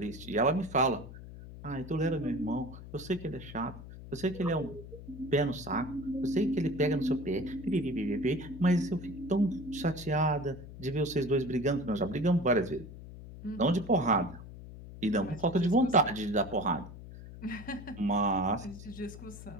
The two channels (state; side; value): noise; left; hum, 14 dB below the sound